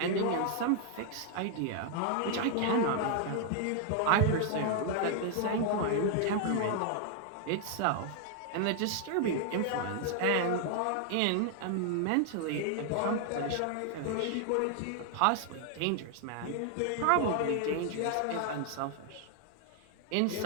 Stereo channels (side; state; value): both; different; correlation 0.00